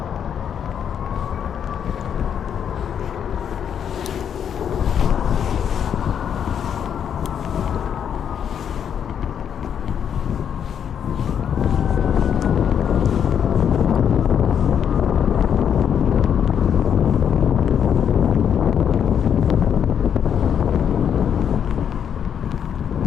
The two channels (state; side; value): quieter; right; 8.3 dB